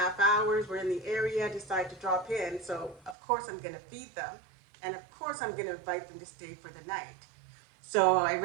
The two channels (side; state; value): left; drops out; at 3.2 s